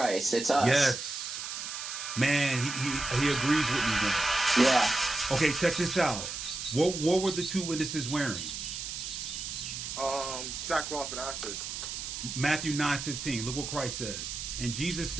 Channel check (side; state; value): right; noise; hiss, 6 dB below the sound